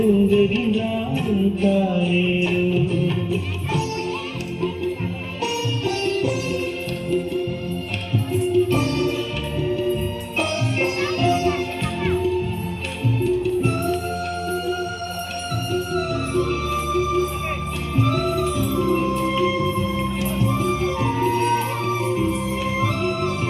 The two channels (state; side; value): identical; both; correlation 1.00